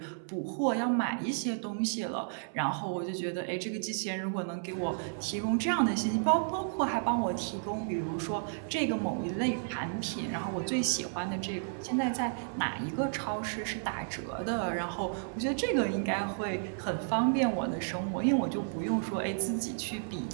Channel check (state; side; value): silent; left; 56 dB below the other